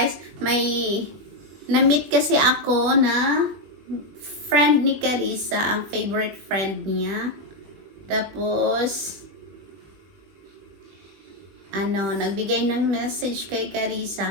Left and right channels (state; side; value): late; left; 20 ms